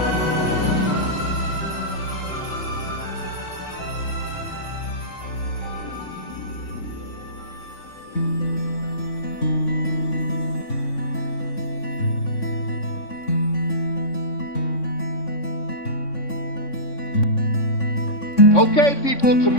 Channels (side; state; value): right; late; 3.6 ms